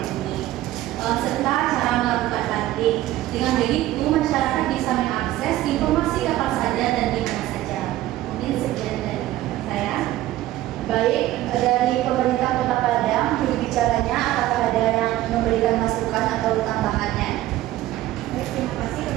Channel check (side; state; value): left; quieter; 15.0 dB